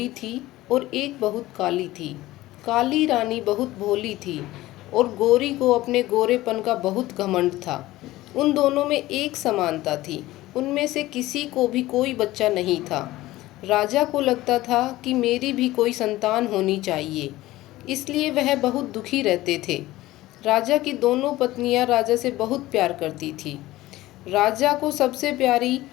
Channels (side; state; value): right; quieter; 17.2 dB